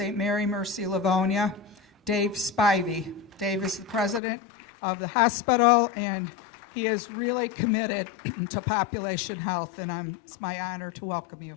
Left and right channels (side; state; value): right; drops out; at 4.2 s